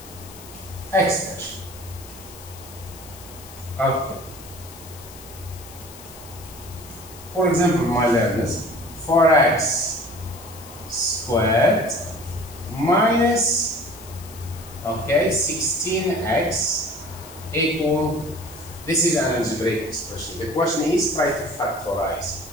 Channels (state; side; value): noise; left; hiss, 18 dB below the sound